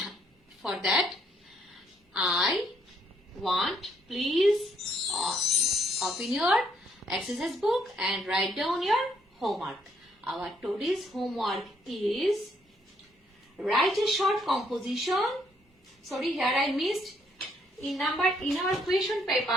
For that, I want please open your exercise book and write down your homework. Our today's homework is write a short composition. Sorry, here I missed. In our question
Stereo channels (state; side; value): normal; both; correlation 0.69